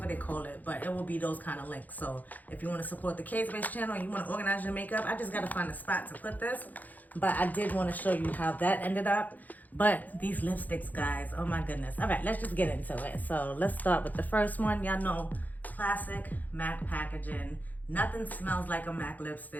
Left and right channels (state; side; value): late; right; 0.081 ms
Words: they call it, but it will be those kind of links. So if you want to support the KSquad channel and you want to organize your makeup, I just got to find a spot to put this, but I did want to show you how that ended up. But these lipsticks, guys, oh my goodness. All right, let's just get into it. So let's start with the first one. Y'all know, classic MAC packaging. Nothing smells like a MAC